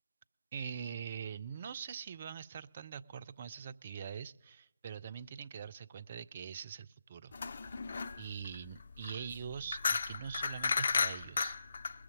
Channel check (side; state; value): both; inverted; correlation -0.82